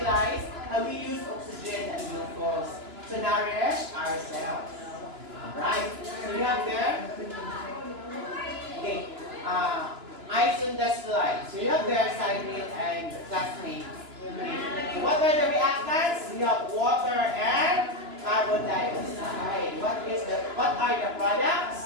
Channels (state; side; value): late; left; 2.9 ms